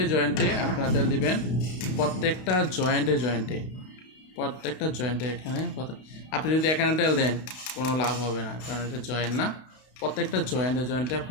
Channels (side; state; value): right; late; 32 ms